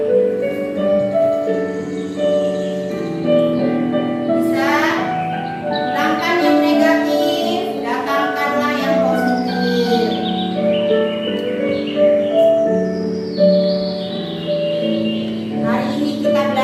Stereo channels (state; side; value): identical; both; correlation 1.00